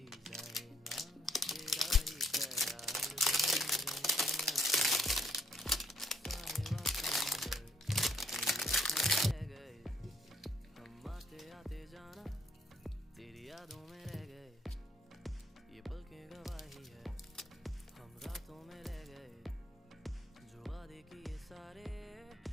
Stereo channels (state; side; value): normal; both; correlation 0.68